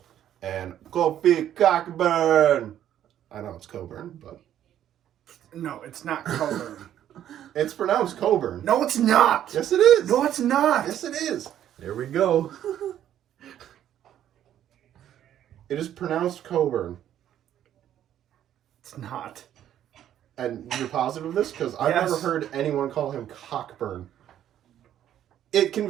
and Kofi Cockburn. I know it's Coburn, but... No, it's not Coburn. It's pronounced Coburn. No, it's not. Yes, it is. No, it's not. Yes, it is. There we go. It is pronounced Coburn. It's not. And you're positive of this? Because I've Yes. never heard anyone call him Cockburn. It can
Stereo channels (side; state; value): left; quieter; 11.0 dB